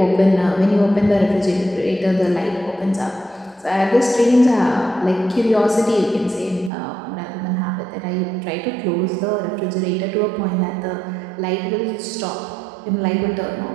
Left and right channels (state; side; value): drops out; left; at 6.7 s